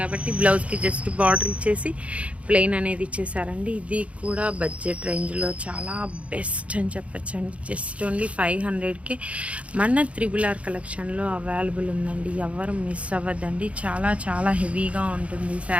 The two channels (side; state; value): left; late; 0.063 ms